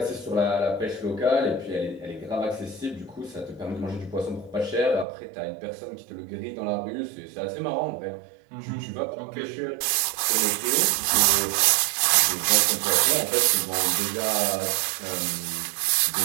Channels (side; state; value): left; drops out; at 5.1 s